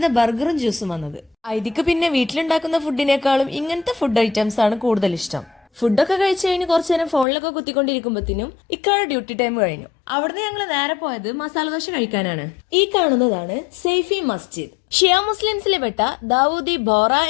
ബർഗറും ജ്യൂസും വന്നത്. ഐതിക്ക് പിന്നെ വീട്ടിലുണ്ടാക്കുന്ന ഫുഡിനേക്കാളും ഇങ്ങനത്തെ ഫുഡ് ഐറ്റംസ് ആണ് കൂടുതൽ ഇഷ്ടം. ഫുഡൊക്കെ കഴിച്ചു കഴിഞ്ഞ് കുറച്ചു നേരം ഫോണിലൊക്കെ കുത്തിക്കൊണ്ടിരിക്കുമ്പോഴത്തേനും ഇക്കാടെ ഡ്യൂട്ടി ടൈം കഴിഞ്ഞു. അവിടുന്ന് ഞങ്ങൾ നേരെ പോയത് മസാല ദോശ കഴിക്കാനാണ്. ഈ കാണുന്നതാണ് സൈഫി മസ്ജിദ്. ഷിയ മുസ്ലിംസിലെ പെട്ട ദാവൂദി ബോറ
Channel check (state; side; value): drops out; right; at 7.2 s